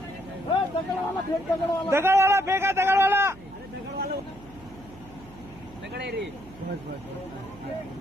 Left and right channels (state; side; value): noise; right; hum, 21 dB below the sound